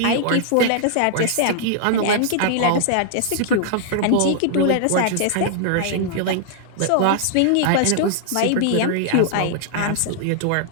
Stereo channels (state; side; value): different; both; correlation -0.01